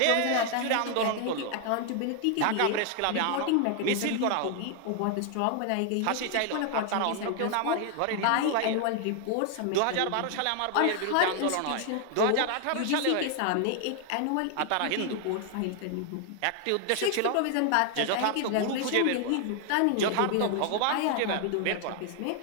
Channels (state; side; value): different; both; correlation 0.00